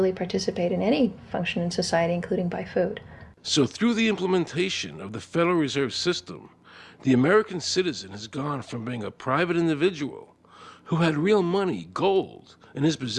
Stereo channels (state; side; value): identical; both; correlation 1.00